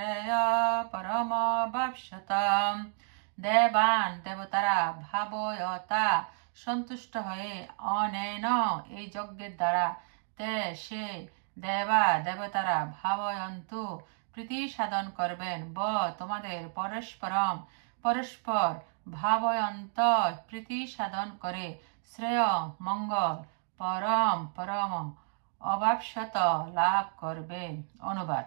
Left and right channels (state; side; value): silent; left; 57 dB below the other